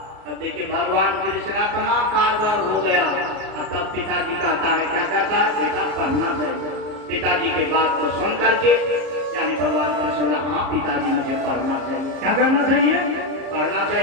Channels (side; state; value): left; late; 33 ms